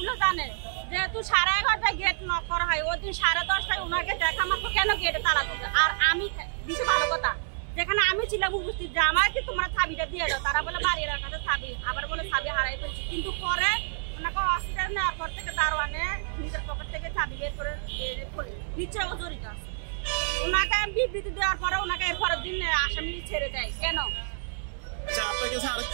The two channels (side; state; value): left; silent; 59 dB below the other